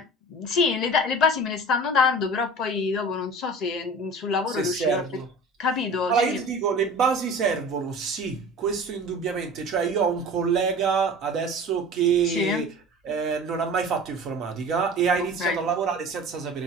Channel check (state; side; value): normal; both; correlation 0.39